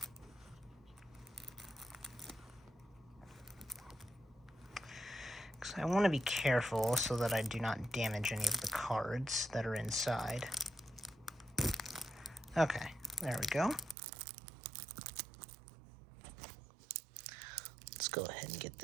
I want to be careful so that I do not damage any of the cards that are inside. Okay, there we go. Let's go ahead and get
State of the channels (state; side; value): drops out; left; at 14.0 s